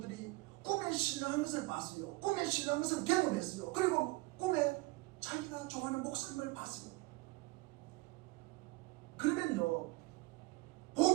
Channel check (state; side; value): quieter; left; 23.0 dB